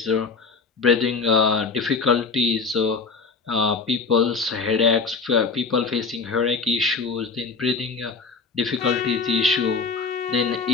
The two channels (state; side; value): quieter; right; 4.7 dB